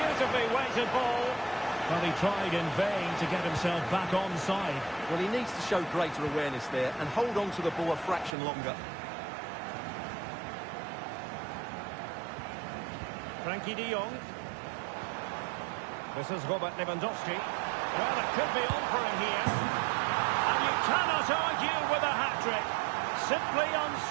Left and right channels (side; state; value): left; drops out; at 8.3 s